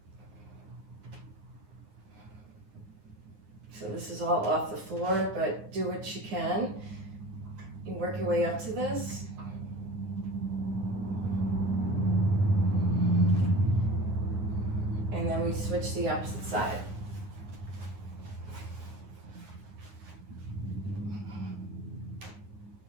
So this is all off the floor, but do what you can. You work your way up to this. And then we switch to the opposite side.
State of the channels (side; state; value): left; late; 9.5 ms